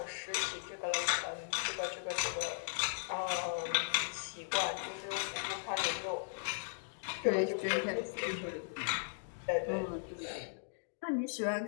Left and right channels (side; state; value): right; silent; digital silence